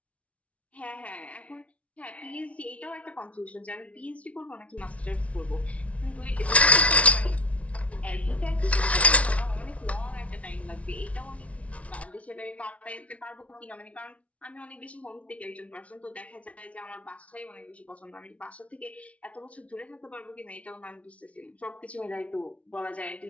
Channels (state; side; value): late; right; 0.064 ms